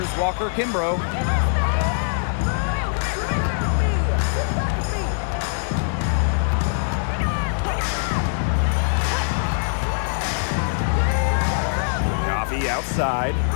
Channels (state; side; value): silent; right; 64 dB below the other